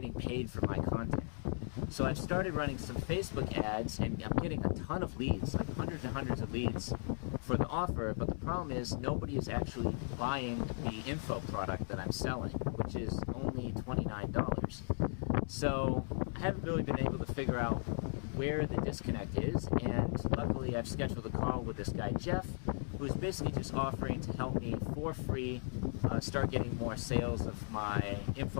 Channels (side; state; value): right; silent; digital silence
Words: paid for my content. So I've started running some Facebook ads, and I'm getting a ton of leads, like hundreds and hundreds of leads for the offer, but the problem is nobody is actually buying the info product that I'm selling, which is only $29. So I haven't really been able to figure out where the disconnect is, and luckily I've scheduled a call with this guy Jeff, who's basically just offering to help me for free start getting more sales of my